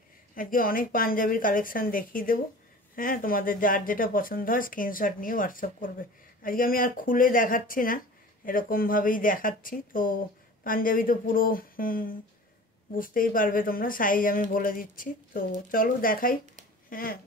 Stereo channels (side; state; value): both; normal; correlation 0.41